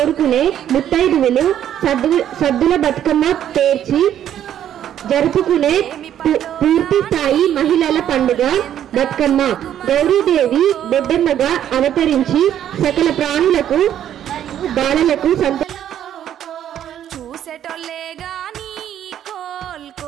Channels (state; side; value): quieter; left; 10.6 dB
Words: ముత్తైదువులు సద్దుల బతుకమ్మ పేర్చి జరుపుకునే పూర్తి స్థాయి మహిళల పండుగ బతుకమ్మ. గౌరీదేవి బొడ్డెమ్మగా అవతరించి సకల ప్రాణులకు బాలలకు చూసేటోళ్ళే గాని కోల్